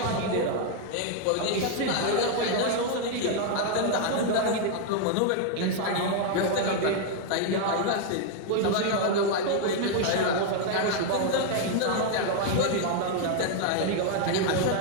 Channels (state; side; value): different; both; correlation 0.00